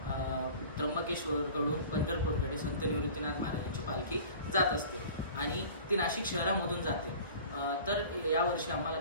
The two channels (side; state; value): both; inverted; correlation -0.43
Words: त्र्यंबकेश्वरकडून पंढरपूरकडे संत निवृत्तीनाथ महाराजांची पालखी जात असते आणि ती नाशिक शहरामधून जाते. तर यावर्षी आम्हाला